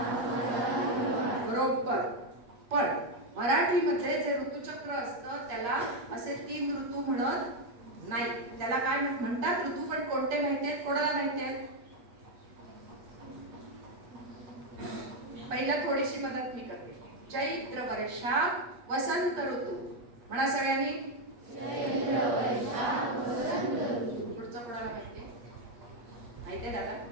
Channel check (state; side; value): late; left; 8.2 ms